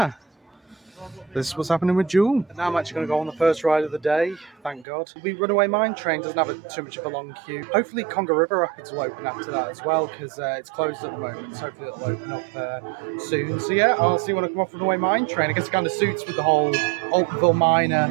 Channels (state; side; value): drops out; left; at 4.9 s